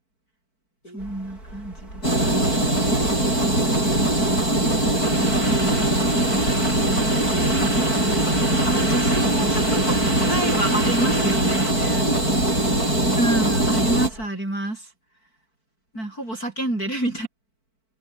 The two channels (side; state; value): right; late; 4.5 ms